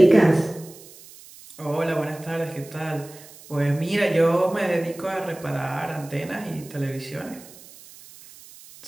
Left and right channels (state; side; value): noise; right; hiss, 20 dB below the sound